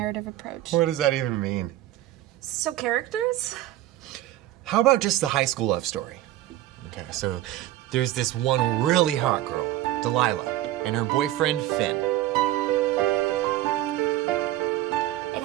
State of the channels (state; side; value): quieter; left; 14.6 dB